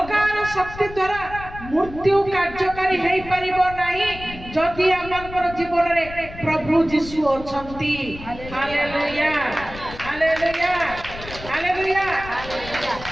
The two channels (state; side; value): noise; left; rumble, 14 dB below the sound